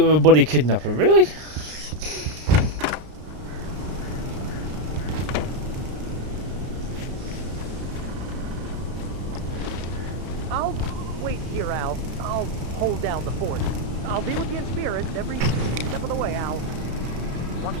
a buddy kidnapper, really?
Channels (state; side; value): late; left; 33 ms